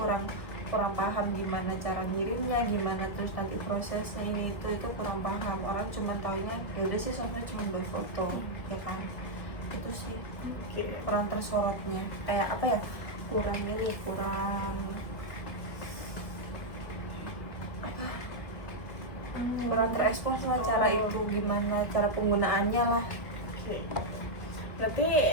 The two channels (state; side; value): late; right; 1.6 ms